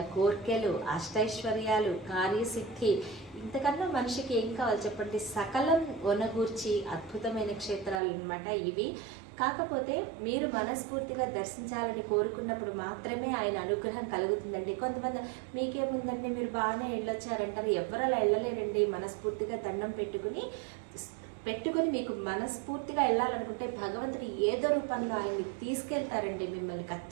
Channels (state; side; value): drops out; left; at 8.0 s